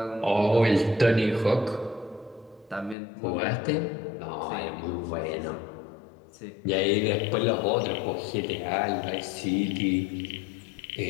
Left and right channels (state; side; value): drops out; right; at 3.0 s